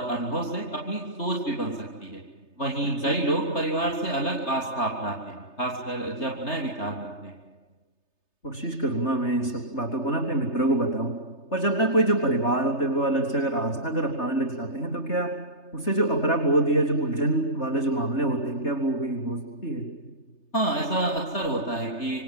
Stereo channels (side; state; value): right; late; 3.3 ms